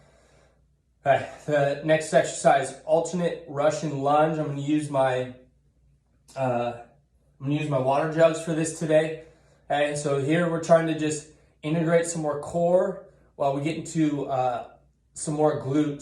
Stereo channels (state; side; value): identical; both; correlation 1.00